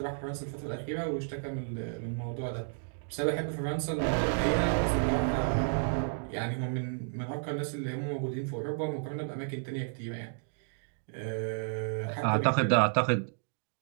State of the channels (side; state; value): left; silent; digital silence